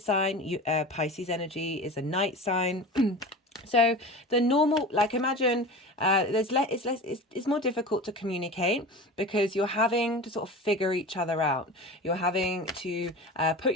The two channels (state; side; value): normal; both; correlation 0.33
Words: Pisces energy is a night sign. So the normal, like imagine it's more difficult to communicate because you're having to sort of figure each other out. You're having to put